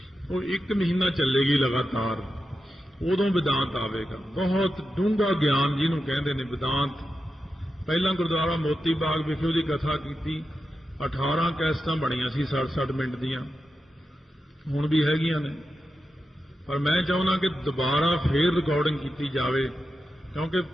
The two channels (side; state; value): both; normal; correlation 0.90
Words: ਉਹ 1 ਮਹੀਨਾ ਚੱਲੇਗੀ ਲਗਾਤਾਰ, ਉਦੋਂ ਵਿਦਾਂਤ ਆਵੇਗਾ। ਬਹੁਤ ਡੂੰਘਾ ਗਿਆਨ ਜਿਹਨੂੰ ਕਹਿੰਦੇ ਨੇ ਵਿਦਾਂਤ। ਪਹਿਲਾਂ ਗੁਰਦੁਆਰਾ ਮੋਤੀ ਬਾਗ ਵਿਖੇ ਉਹਦੀ ਕਥਾ ਕੀਤੀ, 18 ਕੈਸਟਾਂ ਬਣੀਆਂ ਸੀ 60-60 ਮਿੰਟ ਦੀਆਂ, ਹੁਣ ਵੀ ਹੈਗੀਆਂ ਨੇ। ਪਰ ਮੈਂ ਚਾਹੁੰਦਾ ਕਿ ਦੁਬਾਰਾ ਫੇਰ ਰਿਕਾਰਡਿੰਗ ਕੀਤੀ ਜਾਵੇ, ਕਿਉਂਕਿ